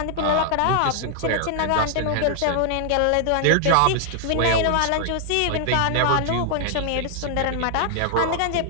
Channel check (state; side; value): different; both; correlation 0.00